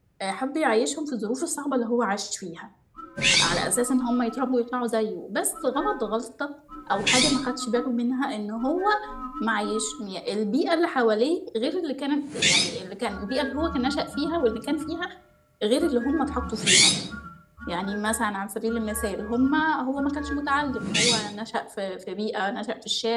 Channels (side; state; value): both; identical; correlation 1.00